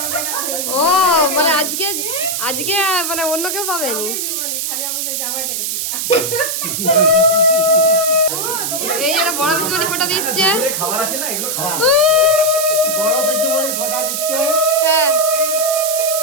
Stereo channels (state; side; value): noise; right; hiss, 2 dB below the sound